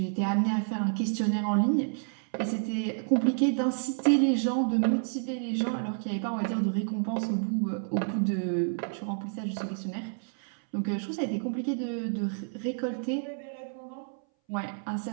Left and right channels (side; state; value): left; silent; 58 dB below the other